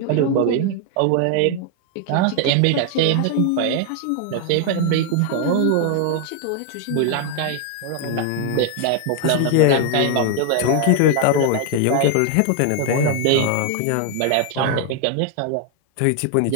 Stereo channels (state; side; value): different; both; correlation 0.00